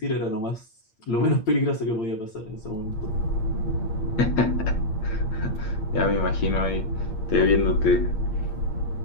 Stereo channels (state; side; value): late; right; 8.7 ms